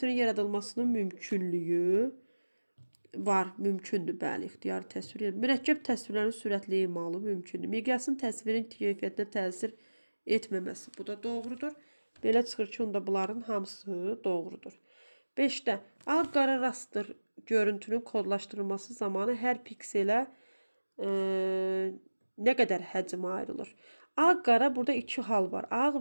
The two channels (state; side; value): inverted; both; correlation -1.00